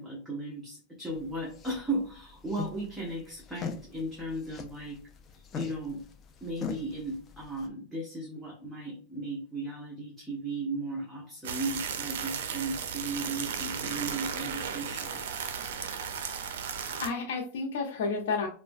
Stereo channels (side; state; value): both; normal; correlation -0.13